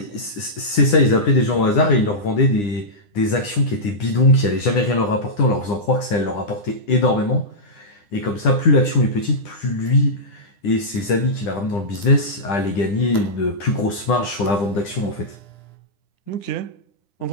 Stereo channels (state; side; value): late; right; 9.9 ms